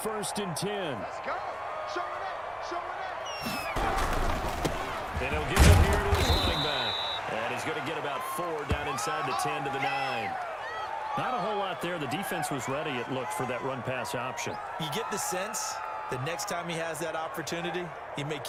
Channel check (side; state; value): both; identical; correlation 1.00